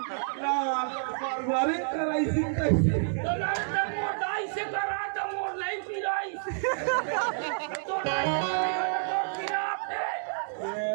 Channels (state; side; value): silent; left; digital silence